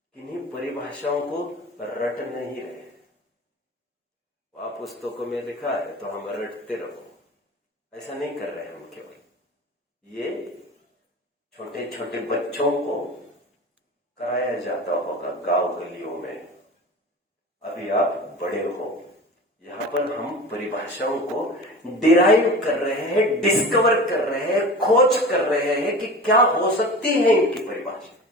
किन्हीं परिभाषाओं को रट नहीं रहे। आप पुस्तकों में लिखा है तो हम रटते रहो, ऐसा नहीं कर रहे हम। केवल ये छोटे छोटे बच्चों को कराया जाता होगा गांव गलियों में। अभी आप बड़े हो, यहाँ पर हम परिभाषाओं को डिराइव कर रहे हैं, डिस्कवर कर रहे हैं, खोज कर रहे हैं कि क्या हो सकती है इनकी परिभाषा।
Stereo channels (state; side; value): normal; both; correlation 0.35